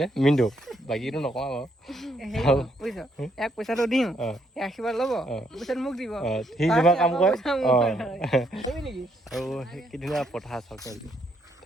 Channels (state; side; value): normal; both; correlation 0.73